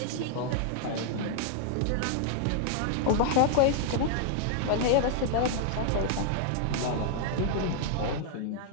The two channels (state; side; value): different; both; correlation 0.00